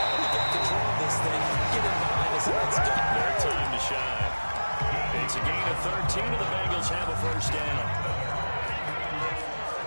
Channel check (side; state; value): both; inverted; correlation -1.00